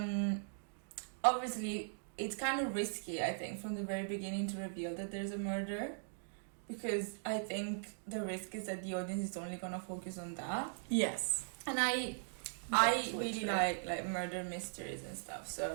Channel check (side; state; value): left; silent; digital silence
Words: obviously it's kind of risky, I think, from the very beginning to reveal that there's a murder. Because I think the risk is that the audience is only going to focus on that. Yes. And I really like murder mysteries and stuff.